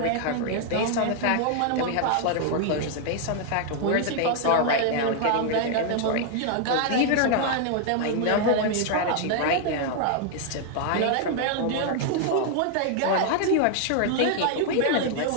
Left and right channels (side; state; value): both; different; correlation 0.00